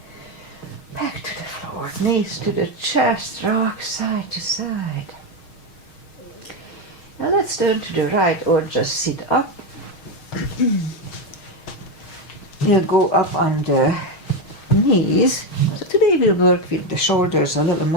Back to the floor, knees to the chest, rock side to side. Now let's turn to the right or just sit up. We'll go up on the knees. So today we'll work with the shoulders a little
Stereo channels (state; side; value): late; right; 6.4 ms